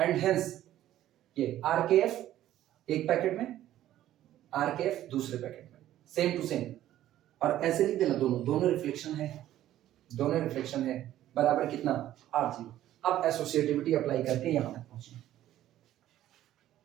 hence ये RKF एक पैकेट में, RKF दूसरे पैकेट में, सेम टू सेम। और ऐसे लिख देना, दोनों रिफ्लेक्शन है, दोनों रिफ्लेक्शन है बराबर कितना, r जीरो। अब एसोसिएटिविटी अप्लाई करके यहां तक पहुंचना,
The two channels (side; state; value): left; quieter; 13.1 dB